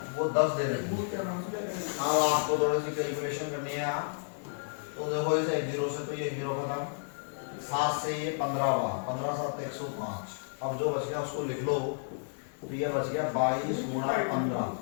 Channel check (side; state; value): right; silent; 55 dB below the other